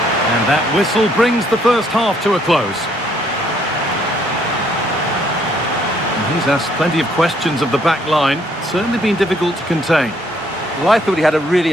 And that whistle brings the first half to a close. And he's asked plenty of questions of the back line. Certainly been difficult to contain. Well, I thought he had a really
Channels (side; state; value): both; normal; correlation 0.67